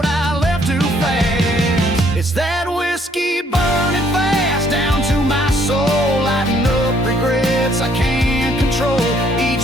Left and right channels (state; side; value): normal; both; correlation 0.65